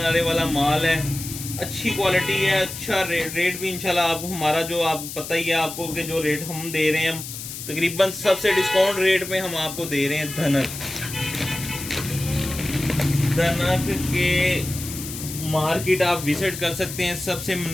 वाला माल है, अच्छी क्वालिटी है, अच्छा रेट भी इंशाल्लाह आप हमारा जो आप पता ही है आपको कि जो रेट हम दे रहे हैं तकरीबन सबसे डिस्काउंट रेट में हम आपको दे रहे हैं। धनक के मार्केट आप विजिट कर सकते हैं, सबसे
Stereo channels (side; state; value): left; noise; hiss, 9 dB below the sound